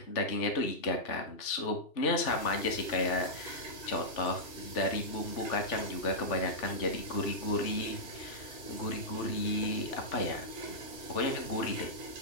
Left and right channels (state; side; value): late; right; 3.4 ms